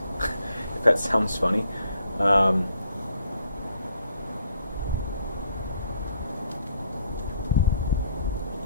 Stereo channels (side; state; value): both; inverted; correlation -0.69